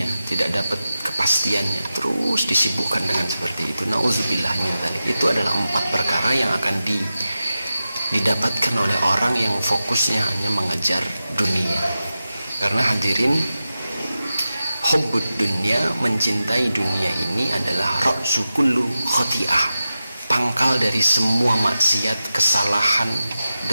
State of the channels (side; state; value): both; inverted; correlation -0.93